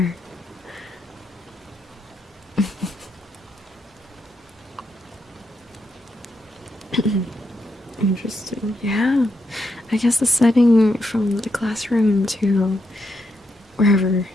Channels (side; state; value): both; normal; correlation 0.81